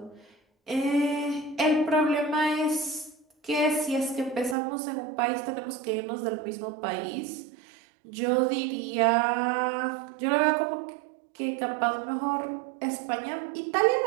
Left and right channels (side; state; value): left; drops out; at 4.5 s